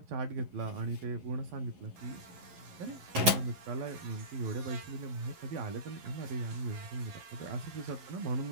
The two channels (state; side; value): late; left; 11 ms